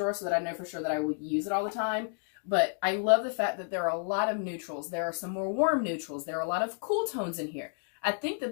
so that I know for sure that I will use it all the time. But I love the fact that there are a lot of neutrals. There are some more warm neutrals. There are a lot of cool tones in here. I think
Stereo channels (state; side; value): silent; right; 57 dB below the other